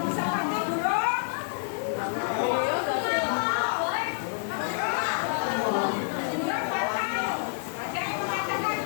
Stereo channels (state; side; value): silent; right; digital silence